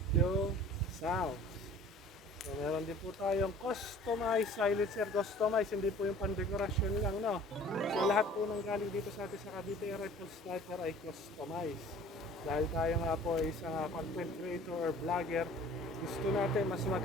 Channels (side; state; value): both; normal; correlation 0.48